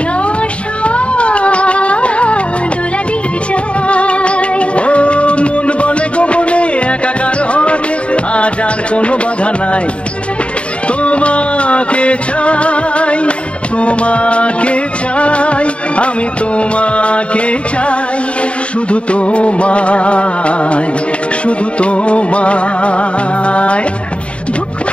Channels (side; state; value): right; late; 0.060 ms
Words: আশা দোলা দিয়ে যায়। ও মন বলে গোপনে একাকার হতে আজ আর কোনো বাধা নাই, তোমাকে চাই, তোমাকে চাই, আমি তোমাকে চাই, শুধু তোমায়, শুধু তোমায়। বুক